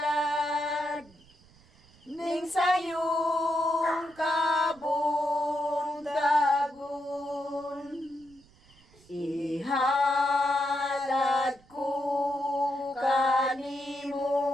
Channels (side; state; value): right; noise; rumble, 28 dB below the sound